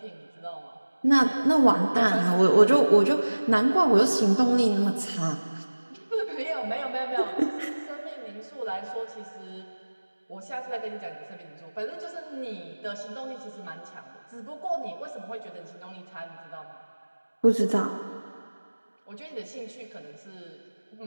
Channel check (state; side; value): inverted; both; correlation -1.00